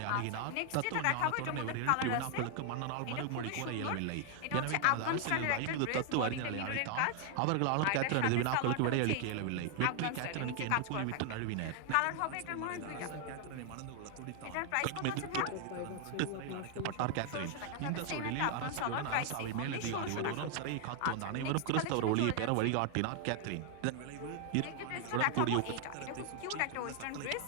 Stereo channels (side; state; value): both; different; correlation 0.00